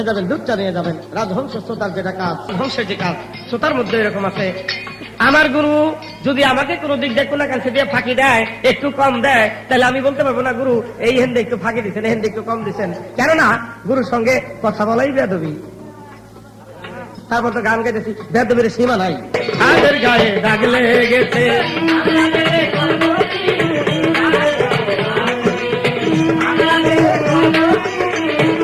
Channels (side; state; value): both; identical; correlation 1.00